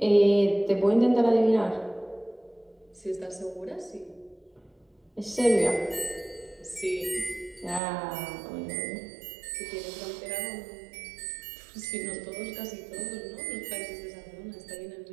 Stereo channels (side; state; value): left; drops out; at 7.8 s